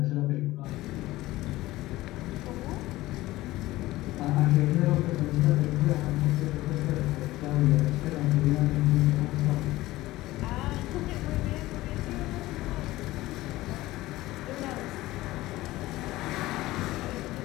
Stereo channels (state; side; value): quieter; right; 17.6 dB